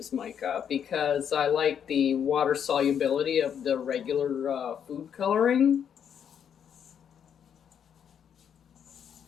mica because I like the water solubility of the regular food coloring.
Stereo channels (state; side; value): quieter; right; 8.3 dB